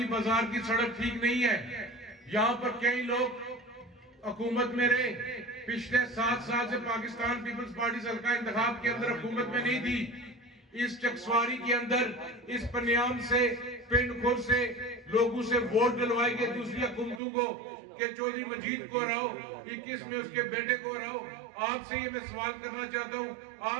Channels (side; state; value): left; drops out; at 17.2 s